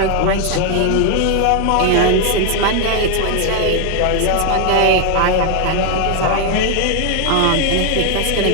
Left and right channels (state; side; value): different; both; correlation 0.00